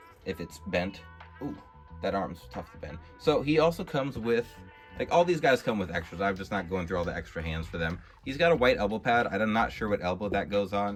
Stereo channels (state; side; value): identical; both; correlation 1.00